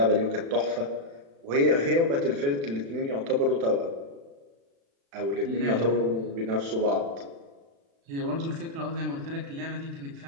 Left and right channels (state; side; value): late; left; 36 ms